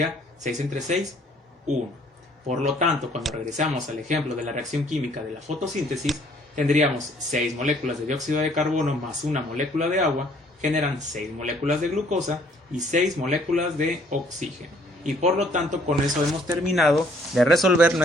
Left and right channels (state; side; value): normal; both; correlation 0.62